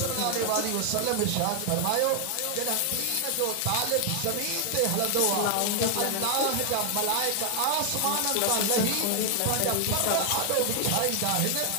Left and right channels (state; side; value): different; both; correlation 0.00